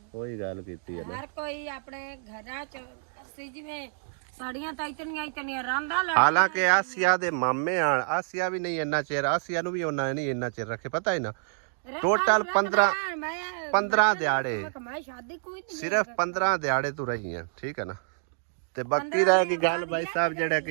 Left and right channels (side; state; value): left; silent; digital silence